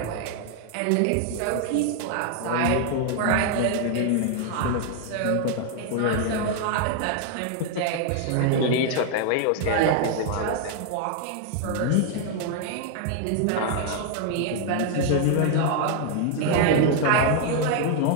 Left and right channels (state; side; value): different; both; correlation 0.00